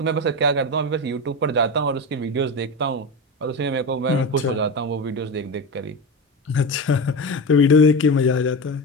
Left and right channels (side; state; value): both; normal; correlation 0.21